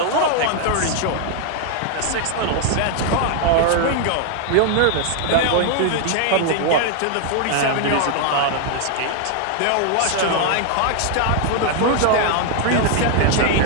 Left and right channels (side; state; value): both; different; correlation 0.00